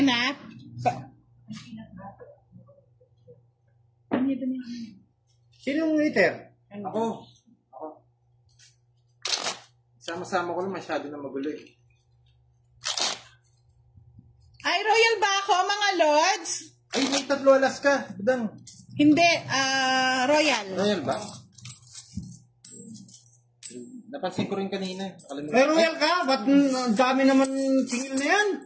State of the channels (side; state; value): both; identical; correlation 1.00